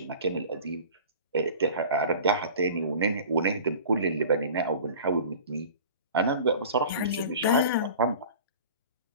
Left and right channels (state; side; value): inverted; both; correlation -0.40